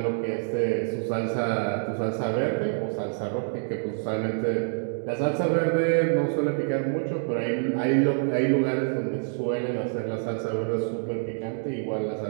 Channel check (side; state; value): left; silent; digital silence